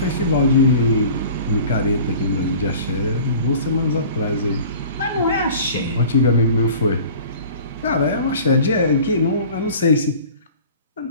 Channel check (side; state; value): both; inverted; correlation -0.44